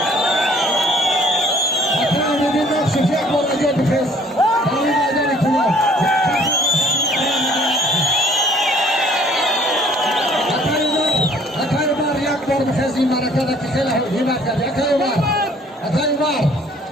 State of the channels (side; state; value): both; normal; correlation 0.57